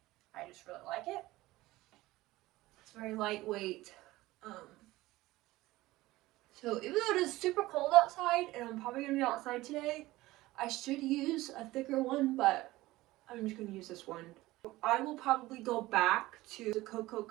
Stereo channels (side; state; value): left; quieter; 18.2 dB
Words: I just really like it. It's very lightweight. So even though it is super cold outside, and I'm probably gonna be outside today, I should use a thicker one, but I'm just gonna use this one. I will probably go back to the Cocoa